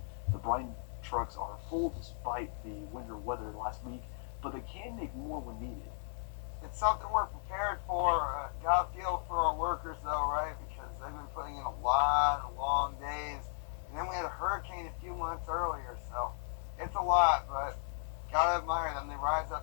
The brine trucks are full despite the winter weather last week, but they can make more when needed. It's something we're prepared for. Gotta feel for our workers though, right? Because they've been putting in a lot of long days. And then we had a hurricane a few months earlier, so it's a lot, but gotta admire them. They rise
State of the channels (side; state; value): right; silent; 54 dB below the other